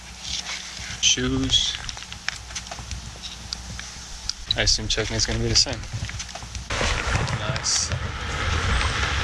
Shoes. I assume checking is gonna be the same. Nice.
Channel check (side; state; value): both; identical; correlation 1.00